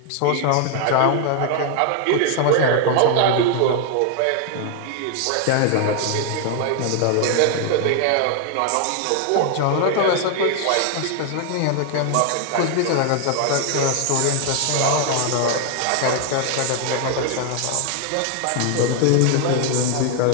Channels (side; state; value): both; different; correlation 0.00